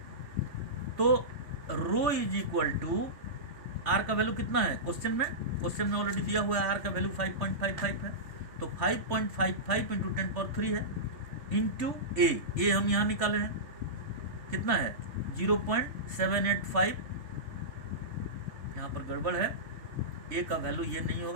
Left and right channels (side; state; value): left; late; 3.3 ms